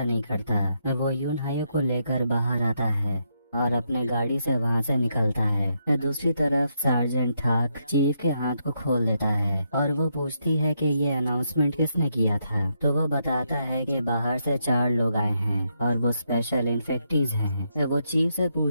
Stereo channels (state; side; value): inverted; both; correlation -0.79